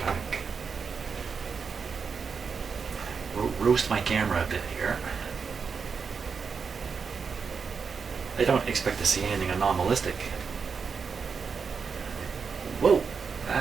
back. Roast my camera a bit here. I don't expect to see anything anomalistic. Whoa!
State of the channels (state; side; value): quieter; left; 5.7 dB